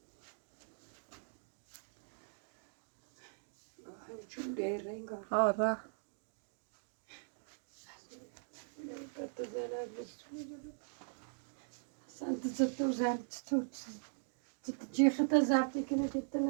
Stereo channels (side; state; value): left; silent; digital silence